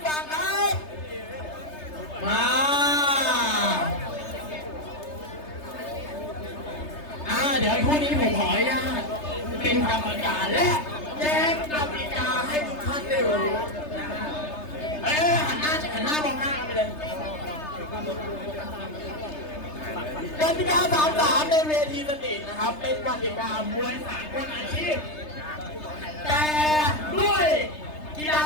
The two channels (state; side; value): late; right; 3.3 ms